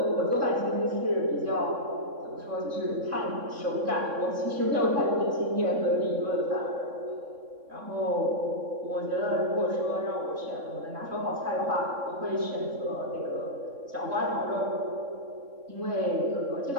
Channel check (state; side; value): late; left; 3.6 ms